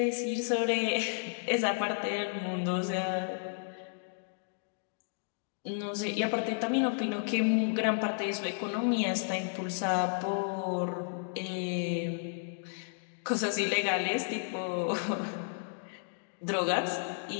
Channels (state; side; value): silent; right; digital silence